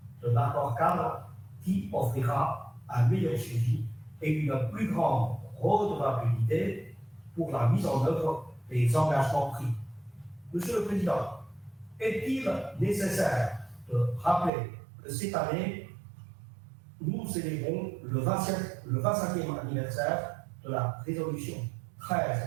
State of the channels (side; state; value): left; drops out; at 14.5 s